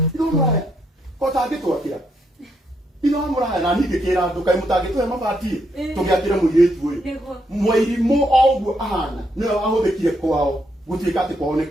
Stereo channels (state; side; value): normal; both; correlation 0.77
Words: itåmraya ko tangä twakä ra ithe wa må raya na ningä kä ra andå kaä må tangä tå he mabati tå gä akä re må irä tu å yå Nĩguo. Mwairimu o ũguo ahana nä we wahå thä kire kwao gå tuä ka atä kwao nä